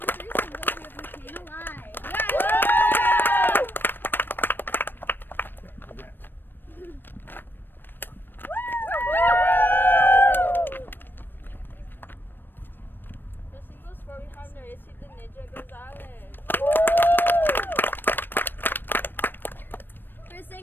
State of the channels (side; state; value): right; late; 0.095 ms